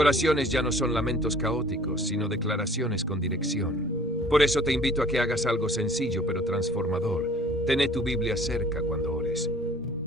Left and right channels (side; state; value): both; normal; correlation 0.51